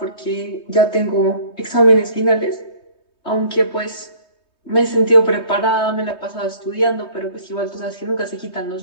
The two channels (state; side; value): late; right; 3.2 ms